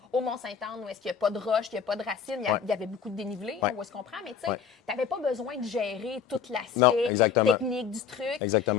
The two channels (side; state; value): right; quieter; 7.0 dB